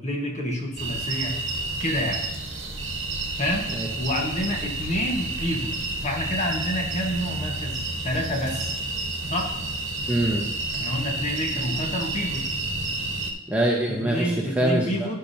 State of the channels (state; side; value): normal; both; correlation 0.42